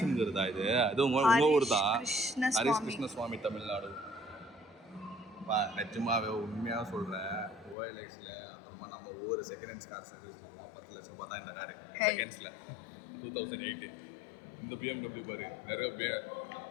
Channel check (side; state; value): right; drops out; at 7.8 s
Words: இது அது உங்க ஊர் தான், ஹரிஸ் கிருஷ்ண சுவாமி, தமிழ்நாடு. நிஜமாவே உண்மையாக சொல்கிறேன், OLXல அப்புறமா நம்ம ஒவ்வொரு செகண்ட் ஹேண்ட்ஸ் கார் சர்வீஸ்லாம் 10 லட்சம் ரூபாய் தான் இந்த காரு செகண்ட்ஸில். 2008 இந்த BMW பாரு. நிறைய